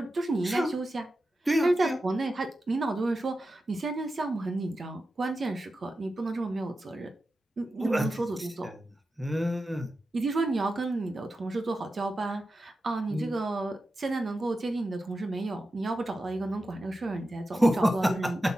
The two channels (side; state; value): both; normal; correlation 0.91